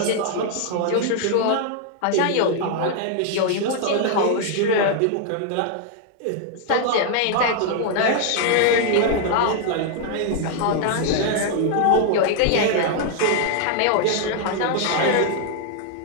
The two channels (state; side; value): different; both; correlation 0.00